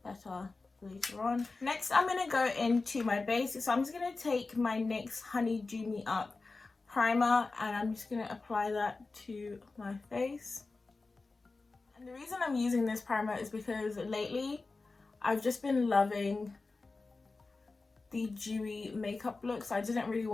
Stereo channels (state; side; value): quieter; right; 3.7 dB